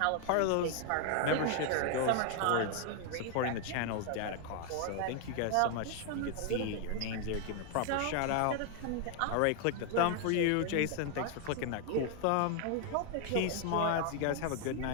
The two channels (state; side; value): different; both; correlation 0.00